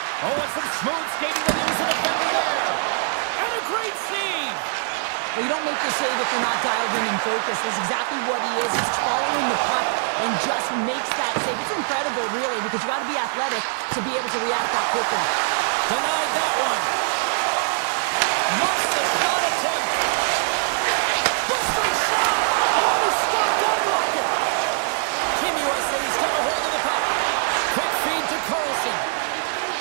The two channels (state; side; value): silent; left; digital silence